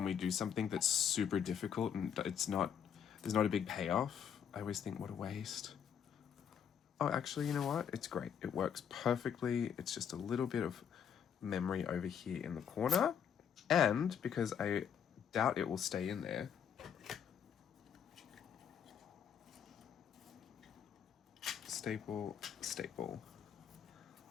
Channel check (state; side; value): quieter; right; 8.1 dB